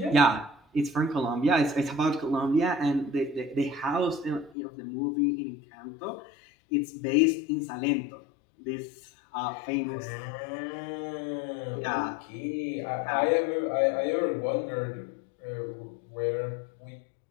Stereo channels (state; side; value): drops out; right; at 4.5 s